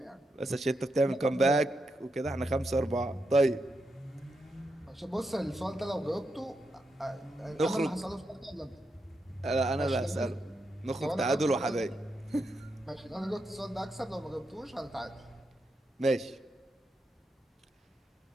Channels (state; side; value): normal; both; correlation 0.84